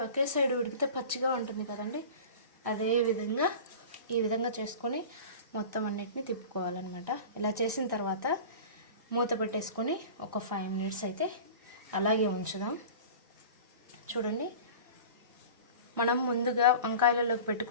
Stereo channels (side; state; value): both; inverted; correlation -0.37